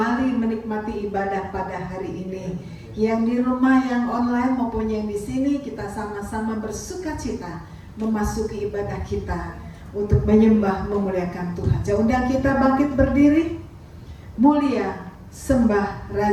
menikmati ibadah pada hari ini. Yang di rumah, yang online maupun yang di sini, kita sama-sama bersukacita memasuki ibadah kita untuk menyembah, memuliakan Tuhan. Saya undang kita bangkit berdiri. Mulia, sembah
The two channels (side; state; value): both; identical; correlation 1.00